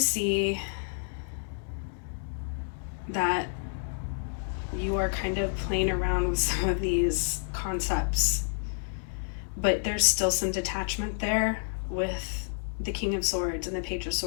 that you are kind of playing around with some of these concepts, but there's still some detachment there with the King of Swords and the Page of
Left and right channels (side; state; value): right; silent; 58 dB below the other